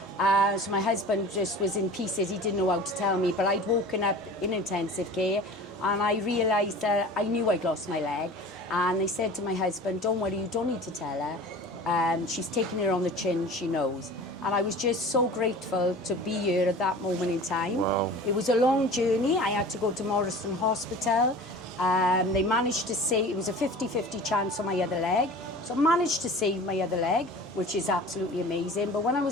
So my husband just was in pieces. He didn't know how to tell me, but I'd woken up in intensive care and I realised that I knew I'd lost my leg. And they said to my husband, don't worry, you don't need to tell her. She's taking it on the chin, she knows. And I was just so grateful to be here at that moment in time. Wow. It was a long journey. I had to go to Morrison Hospital. They managed to save, it was a 50-50 chance on my other leg. So I managed to save my other leg, which is absolutely amazing. But when I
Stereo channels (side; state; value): both; normal; correlation 0.40